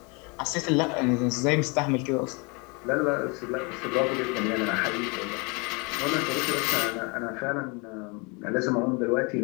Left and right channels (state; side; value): quieter; right; 30.4 dB